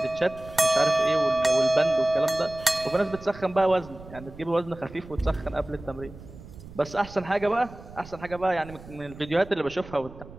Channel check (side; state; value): right; noise; rumble, 17 dB below the sound